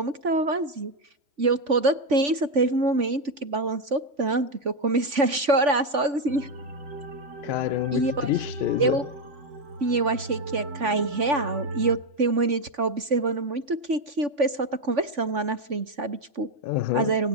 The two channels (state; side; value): late; left; 3.5 ms